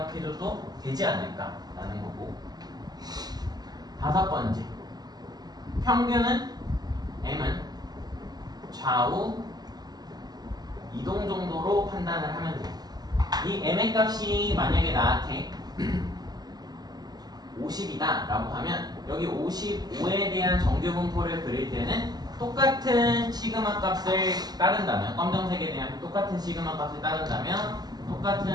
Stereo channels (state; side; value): late; left; 0.20 ms